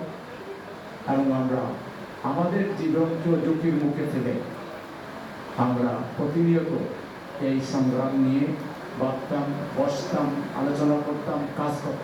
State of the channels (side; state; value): both; identical; correlation 1.00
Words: এবং আমরা আমাদের জীবনকে ঝুঁকির মুখে ফেলে আমরা প্রতিনিয়ত এই সংগ্রাম নিয়ে ভাবতাম, বসতাম, আলোচনা করতাম, কাজ